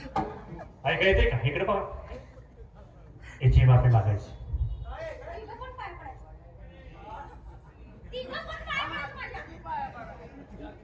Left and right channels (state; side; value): identical; both; correlation 1.00